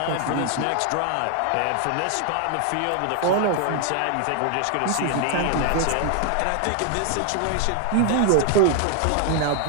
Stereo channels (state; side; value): different; both; correlation 0.00